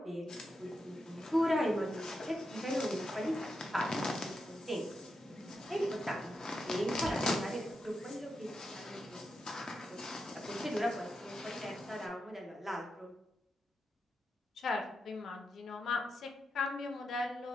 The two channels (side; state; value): both; normal; correlation 0.86